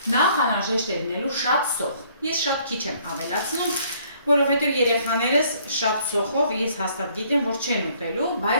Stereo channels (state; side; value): inverted; both; correlation -0.62